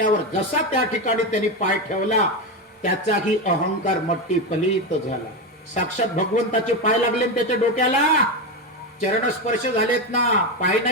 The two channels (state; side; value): normal; both; correlation 0.14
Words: जसा त्या ठिकाणी त्यांनी पाय ठेवला, त्याचाही अहंकार मट्टी फलित झाला. साक्षात भगवंताचे पाय लागले त्याच्या डोक्याला. चरणस्पर्श झालेत ना, पाय